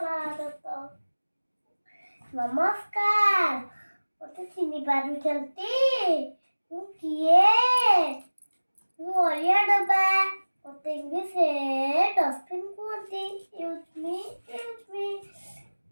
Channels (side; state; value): both; inverted; correlation -1.00